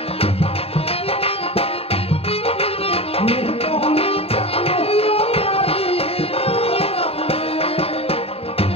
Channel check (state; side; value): late; right; 0.28 ms